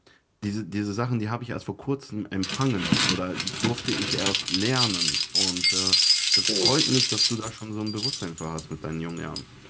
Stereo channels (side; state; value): both; identical; correlation 1.00